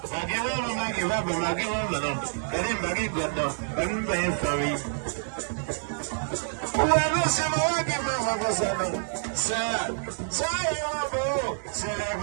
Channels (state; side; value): silent; left; 60 dB below the other